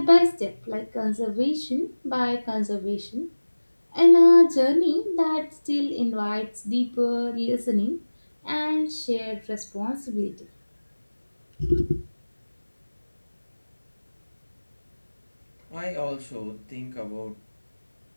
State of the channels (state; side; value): inverted; both; correlation -1.00